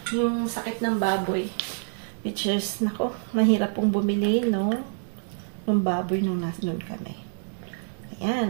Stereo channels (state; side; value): silent; left; digital silence